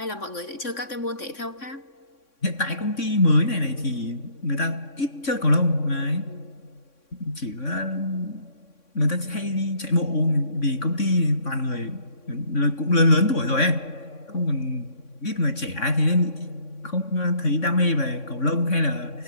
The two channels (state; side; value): late; right; 3.6 ms